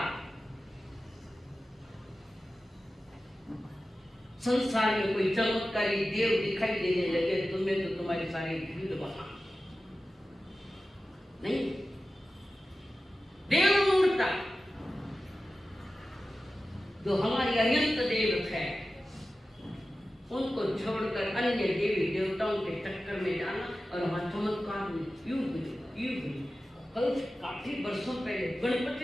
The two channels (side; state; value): both; normal; correlation 0.94